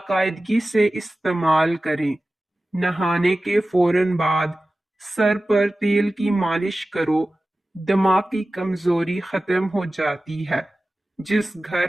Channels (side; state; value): both; normal; correlation 0.96